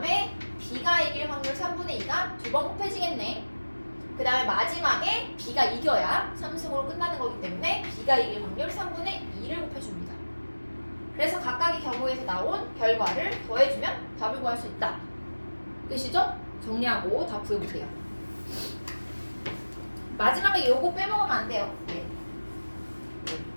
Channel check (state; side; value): inverted; both; correlation -1.00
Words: B가 이길 확률 3분의 2가 두 번 곱해지겠네. 그 다음에 마지막에 B가 이겨야 3승으로 끝나는 거기 때문에 B가 이길 확률 3분의 2를 곱해줍니다. 그래서 각각의 경우에서 나온 결과를 더해주면 답을 구할 수 있다. 끝이죠? 정리하고 다 구해보세요. 마지막에 요거 빼먹으면 안 돼요. 네.